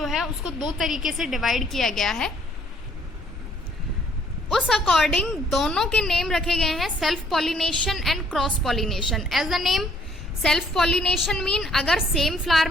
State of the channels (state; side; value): normal; both; correlation 0.64